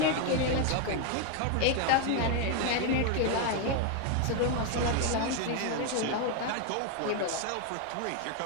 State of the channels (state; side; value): different; both; correlation 0.01